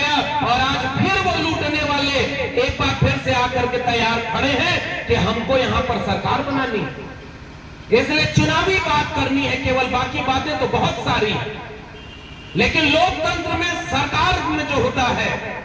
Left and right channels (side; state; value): both; identical; correlation 1.00